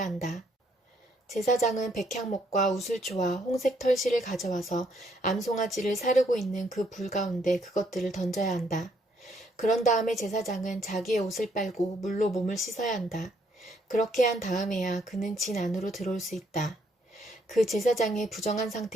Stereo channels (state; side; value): normal; both; correlation 0.70